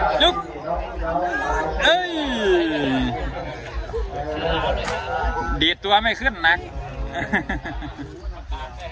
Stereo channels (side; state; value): both; identical; correlation 1.00